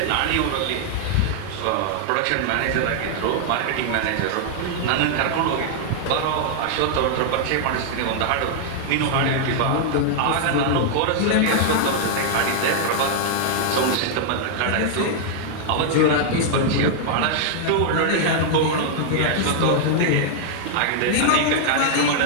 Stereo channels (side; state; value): both; different; correlation -0.01